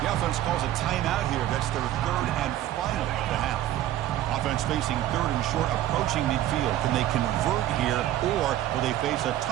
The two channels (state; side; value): quieter; left; 13.2 dB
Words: offense calls a timeout here. That's their third and final of the half. Offense facing third and short, approaching midfield. Can they convert here, or will they face a